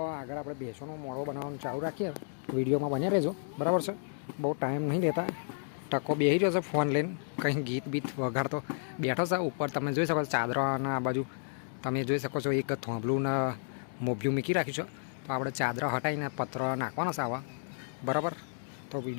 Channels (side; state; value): right; silent; digital silence